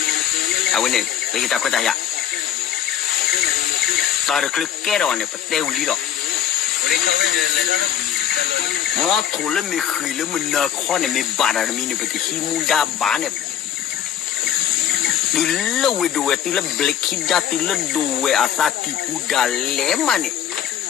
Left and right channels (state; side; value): quieter; right; 10.2 dB